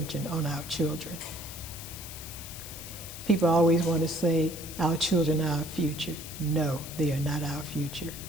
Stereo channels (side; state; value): left; noise; hiss, 11 dB below the sound